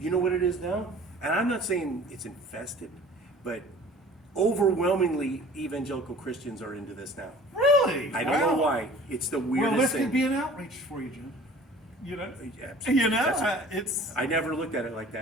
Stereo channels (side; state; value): both; normal; correlation 0.47